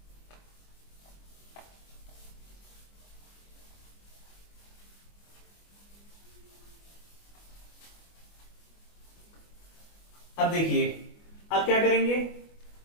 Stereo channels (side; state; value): right; late; 25 ms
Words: अब देखिए अब क्या करेंगे,